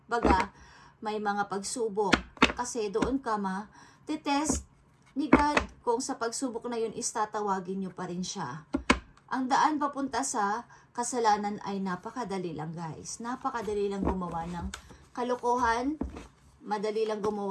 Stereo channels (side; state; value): both; identical; correlation 1.00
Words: Baga, may mga pagsubok. Kasi doon ka titest ni God kung sa pagsubok na yun istatawagin nyo pa rin siya. Ang daan papunta sa kasalanan ay napakadali lang, guys. Napakadali lang gumawa ng kalokohan. Madali lang